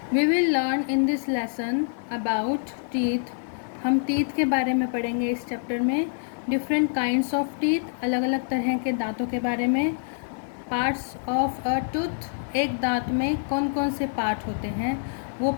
We will learn in this lesson about teeth. हम teeth के बारे में पढ़ेंगे इस chapter में. Different kinds of teeth, अलग अलग तरह के दांतों के बारे में. Parts of a tooth, एक दांत में कौन कौन से पार्ट होते हैं वो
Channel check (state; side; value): silent; right; digital silence